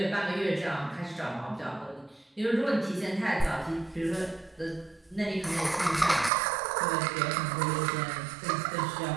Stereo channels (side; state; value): left; drops out; at 6.3 s